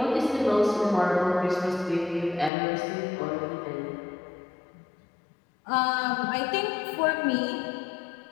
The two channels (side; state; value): right; drops out; at 2.5 s